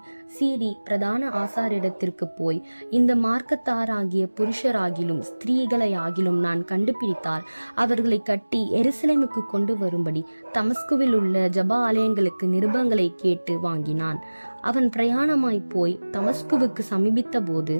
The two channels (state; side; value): inverted; both; correlation -1.00